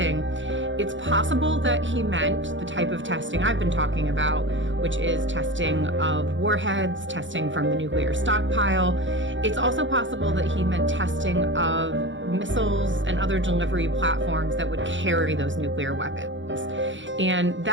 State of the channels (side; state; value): left; late; 0.55 ms